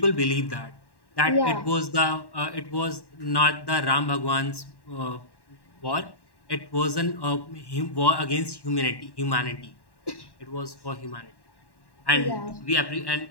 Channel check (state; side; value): late; right; 1.1 ms